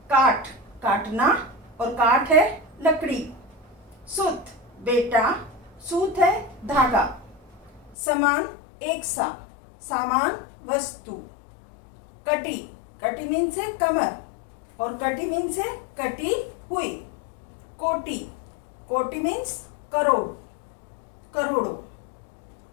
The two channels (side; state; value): right; drops out; at 8.0 s